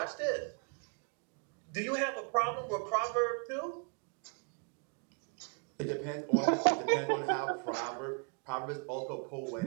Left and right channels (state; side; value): quieter; left; 37.9 dB